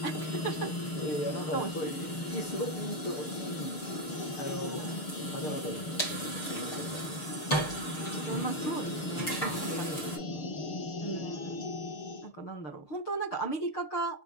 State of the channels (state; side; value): late; right; 6.6 ms